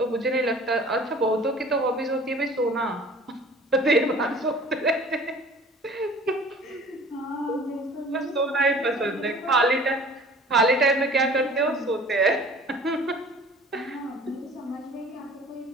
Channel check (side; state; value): both; normal; correlation 0.47